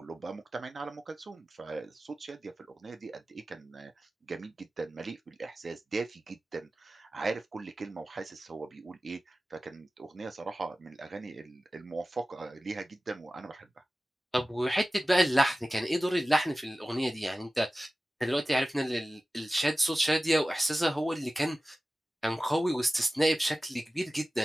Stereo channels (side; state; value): both; normal; correlation 0.96